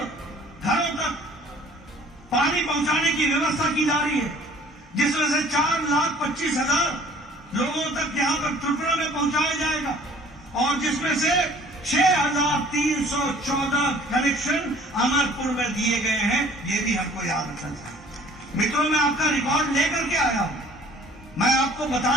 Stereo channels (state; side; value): normal; both; correlation 0.53